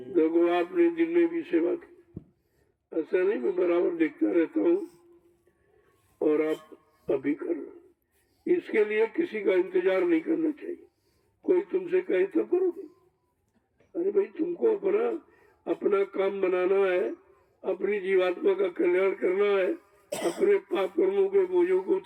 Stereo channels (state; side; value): identical; both; correlation 1.00